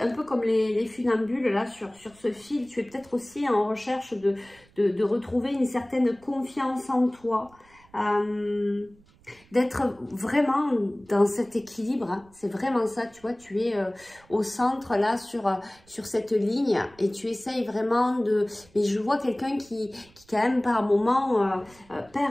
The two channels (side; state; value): right; noise; rumble, 29 dB below the sound